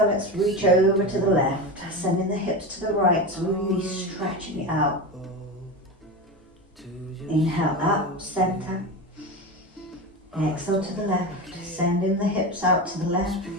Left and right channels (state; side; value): normal; both; correlation 0.23